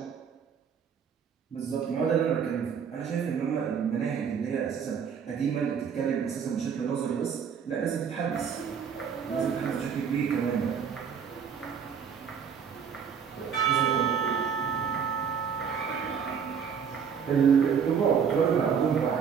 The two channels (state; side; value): quieter; left; 7.0 dB